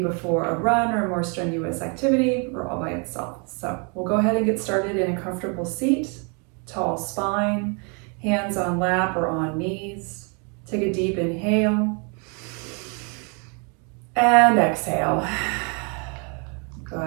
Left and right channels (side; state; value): left; quieter; 35.7 dB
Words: a run or a more strenuous activity or all by itself. So we'll go ahead and get started in a comfortable seat, tall spine, hands on lap or on knees. Take a deep inhale. And exhale.